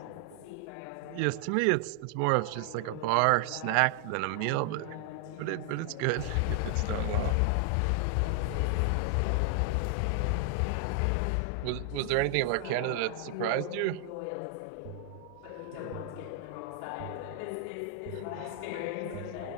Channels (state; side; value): different; both; correlation 0.00